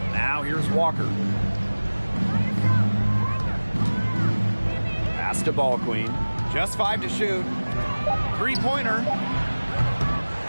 Now here's Walker. Pass to ball queen. Just 5 to shoot. Three-pointer.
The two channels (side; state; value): both; inverted; correlation -1.00